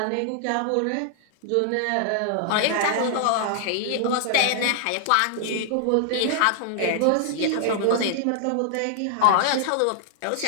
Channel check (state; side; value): different; both; correlation -0.01